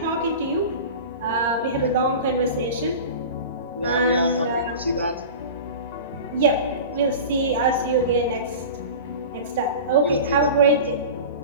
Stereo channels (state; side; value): inverted; both; correlation -0.33